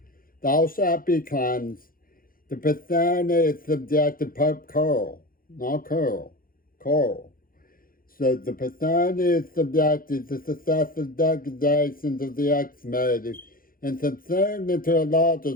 Thou shalt be cleansed. The Bethany is subjected Pope Carl, not Carl, Carl. So the Bethany is subjected to successive degradations of the ex-made and subsumed into a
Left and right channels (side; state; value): right; late; 0.41 ms